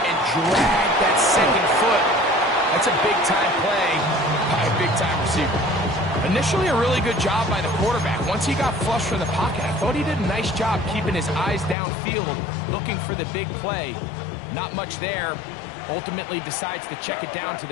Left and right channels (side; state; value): right; drops out; at 11.8 s